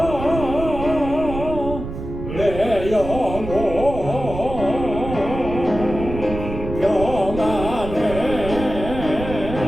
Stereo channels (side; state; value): right; noise; rumble, 8 dB below the sound